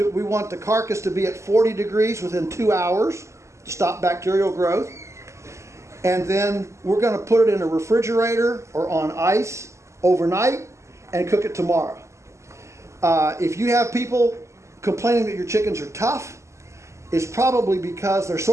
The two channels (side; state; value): left; late; 0.14 ms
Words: the carcass to be at 40 degrees within 2 hours to stop bacterial growth. And then we're going to put it in a refrigerator or on ice overnight and cook it tomorrow. If you have people complaining that your chickens are tough, it's probably because they're